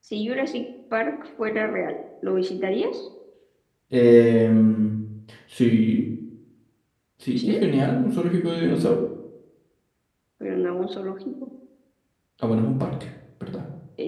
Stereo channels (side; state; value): both; identical; correlation 1.00